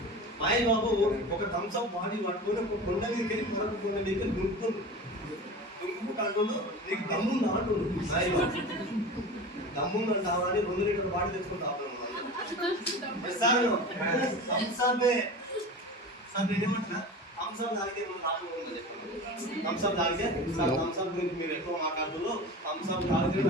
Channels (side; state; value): both; normal; correlation 0.32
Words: మహేష్ బాబు ఒక థమ్స్అప్ బాడీ పట్టుకొని ఒక కొండ మీదకి వెళ్ళి మరొక కొండ మీదకి దుంకుకుంటూ నీకు దమ్ముంది అంటుండు. మహేష్ బాబు దమ్ముందని కావాలి 2 లీటర్ల బాడీ తెచ్చుకుంటాను సార్. థమ్స్అప్ సార్ నేనేమంటున్నా, థమ్స్అప్ తాగితే ఏమన్నా లాభం ఉందని చెప్పండి. థమ్స్అప్ తాగితే సార్ థమ్స్అప్ గురించి మీరు ఎక్కువ మాట్లాడుతూ థమ్స్అప్ తాగితే